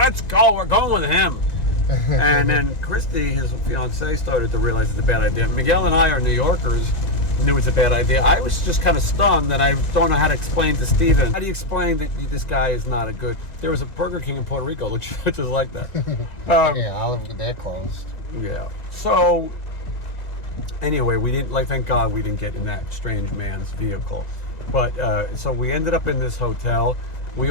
go. We're going with him. And then Christy, his fiancée, started to realize it's a bad idea. Miguel and I are New Yorkers, knew it's a bad idea. I was just kind of stunned, and I don't know how to explain to Stephen. How do you explain that this guy is not a good... There was a Burger King in Puerto Rico, which is like that. They're closed. Yeah. So, anyway, we didn't, thank God we didn't get in that strange man's vehicle. But, so we ended up in this hotel. A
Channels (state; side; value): late; right; 1.9 ms